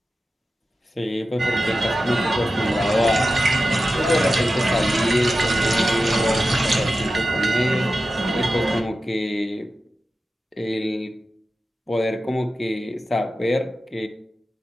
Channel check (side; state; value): both; normal; correlation 0.92